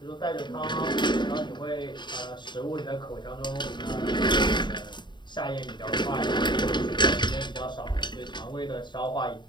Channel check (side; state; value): right; late; 0.22 ms